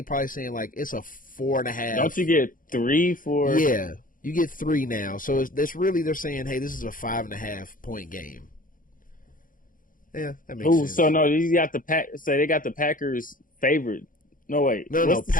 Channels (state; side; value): late; right; 0.40 ms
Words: probably saying like it's a 4.5. Don't you get 3 for? Yeah, you get 3 now. So it's really they're saying, hey, this is a 5.5 point game. Yeah, that makes sense. So no, you got the they got the Packers favored. No wait, no.